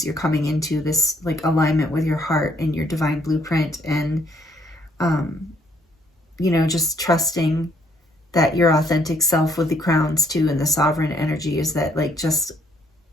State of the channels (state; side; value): normal; both; correlation 0.68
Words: you're coming into this like alignment with your heart and your divine blueprint. And, you know, just trusting that your authentic self with the crowns too, and the sovereign energy is that like just